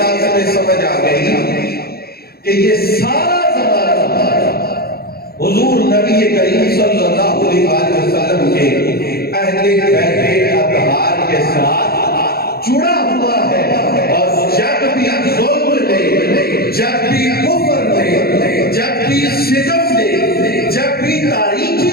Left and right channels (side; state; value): right; late; 0.45 ms